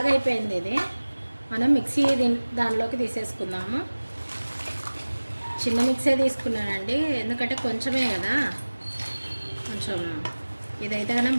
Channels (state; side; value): inverted; both; correlation -1.00